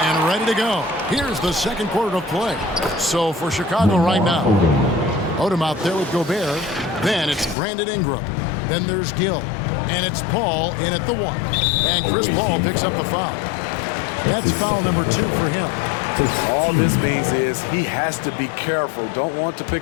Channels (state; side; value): drops out; right; at 7.6 s